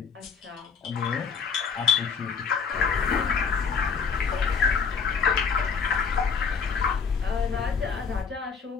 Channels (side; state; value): right; quieter; 5.8 dB